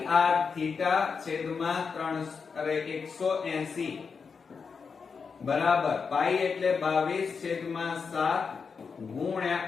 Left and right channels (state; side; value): quieter; right; 5.5 dB